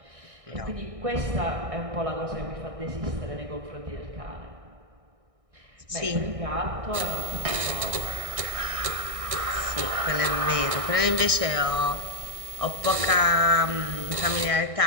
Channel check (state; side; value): late; left; 1.6 ms